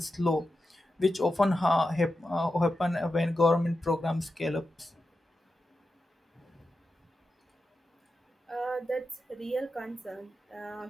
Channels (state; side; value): normal; both; correlation 0.90